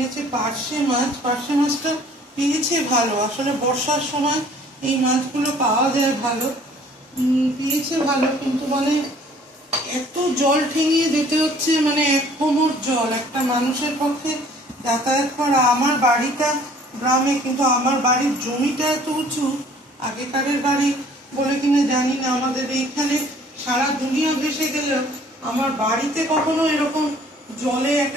পার্শে মাছ। পার্শে মাছটা পেয়েছে ভালো, আসলে বর্ষার সময় এই মাছগুলো পাওয়া যায় ভালো, পেয়েছে ভালো, কিন্তু মানে এত জল ঠেঙিয়ে যেতে হচ্ছে, মানে এক কোমর জল একটা মানুষের পক্ষে যাতায়াত করা। আমার বাড়িটা গ্রামে, কিন্তু আমার বাড়ির জমিটা এত উঁচু, আগেকারের বাড়ি বলে কিনা জানি না, আমাদের এইখানে সারা দুনিয়া ভেসে গেলেও আমার বাড়িতে কখনো এরকম জলে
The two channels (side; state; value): both; normal; correlation 0.55